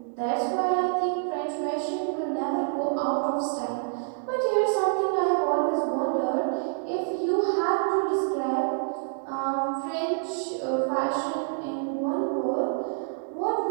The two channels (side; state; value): left; silent; digital silence